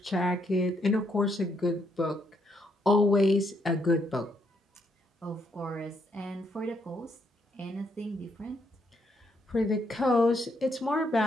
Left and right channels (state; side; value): normal; both; correlation 0.75